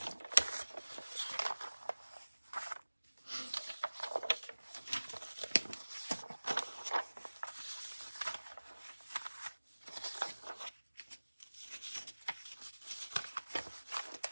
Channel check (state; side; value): inverted; both; correlation -1.00